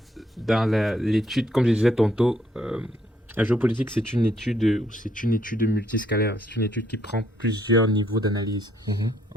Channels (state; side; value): normal; both; correlation 0.70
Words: dans l'étude, comme je disais tantôt, la géopolitique, c'est une étude multiscalaire. C'est une étude qui prend plusieurs niveaux d'analyse.